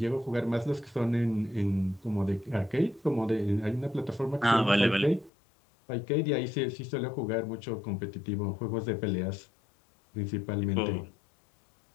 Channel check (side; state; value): right; drops out; at 5.3 s